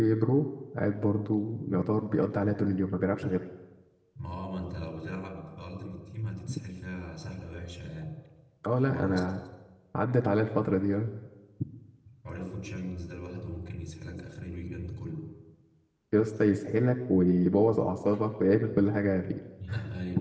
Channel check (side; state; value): both; identical; correlation 1.00